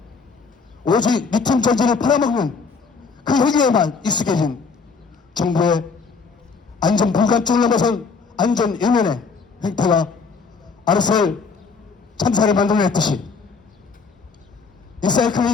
오직 리튬 전지를 팔아먹는 그 행위에만 익숙해진 정부의 안전 불감증을 넘어선 안전 외면의 행태가 아르셀 참사를 만들어냈듯이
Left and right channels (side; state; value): right; quieter; 4.9 dB